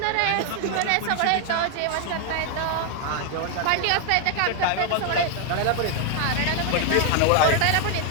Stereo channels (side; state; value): both; different; correlation 0.00